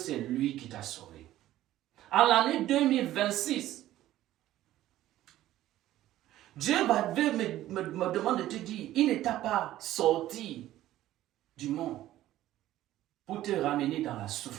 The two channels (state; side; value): quieter; left; 14.2 dB